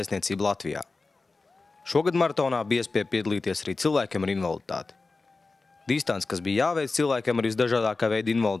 Latvijā. Šogad maratonā bija iespēja piedalīties arī cilvēkiem ar invaliditāti. Distance, kas bija jāveic cilvēkiem ar visdažādākā veida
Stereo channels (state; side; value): quieter; right; 3.8 dB